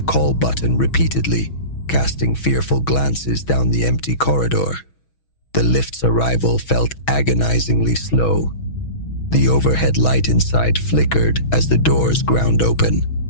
call button repeatedly, casting fearful glances down the empty corridor. The lift's arrival felt agonizingly slow. The overhead light inside flickered as the doors ground open.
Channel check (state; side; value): late; right; 6.2 ms